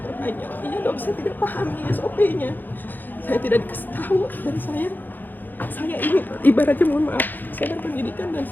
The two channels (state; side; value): late; right; 0.088 ms